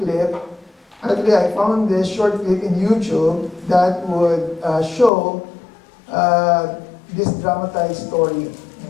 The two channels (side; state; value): right; drops out; at 5.1 s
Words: Actually, I found this short clip in YouTube that would show this dramatized story.